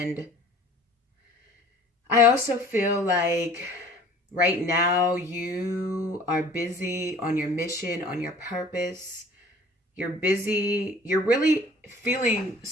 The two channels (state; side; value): normal; both; correlation 0.49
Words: I also feel like right now you are busy on your mission, on your purpose. You're busy. You're really feeling